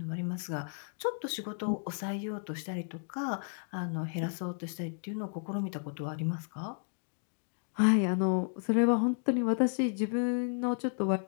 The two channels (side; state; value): right; silent; 56 dB below the other